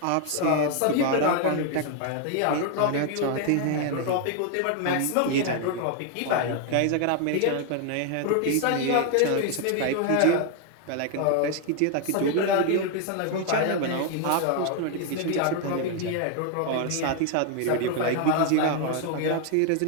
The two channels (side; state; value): both; different; correlation 0.01